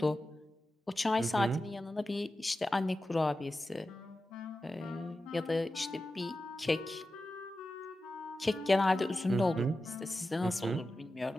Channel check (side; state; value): both; normal; correlation 0.92